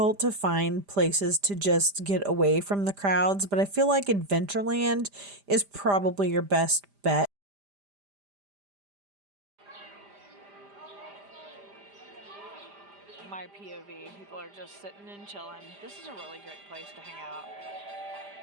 to find places to just get away from the crowds, but I feel like Adventureland is probably your best bet. My POV, people are just sitting and chilling. This is a really great place to hang out.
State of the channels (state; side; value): late; left; 5.0 ms